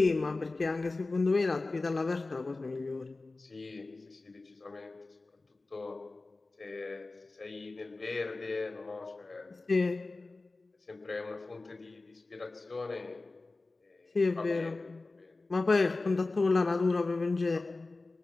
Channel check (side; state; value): right; quieter; 3.4 dB